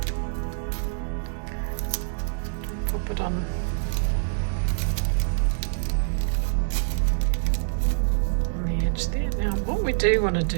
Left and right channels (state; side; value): silent; left; digital silence